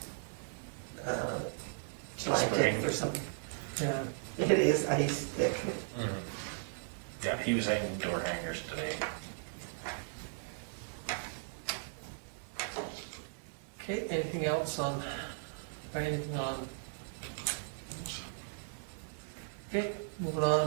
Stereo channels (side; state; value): left; silent; digital silence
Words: July Spring. 10th or something. Yeah, It is ice thick. Yeah, he was hanging door hangers today. okay, anything else on, or anything on? Okay, moving